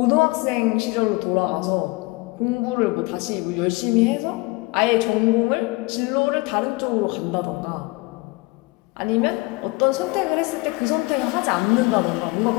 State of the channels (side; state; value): right; quieter; 24.5 dB